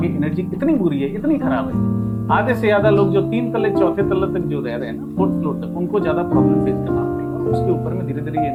एनर्जी इतनी बुरी है, इतनी खराब है। आधे से ज्यादा लोग जो 3 तल्ले 4थे तल्ले तक जो रह रहे हैं ना, 4th फ्लोर तक, उनको ज्यादा प्रॉब्लम फेस करना पड़ेगा। उसके ऊपर में धीरे धीरे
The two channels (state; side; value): identical; both; correlation 1.00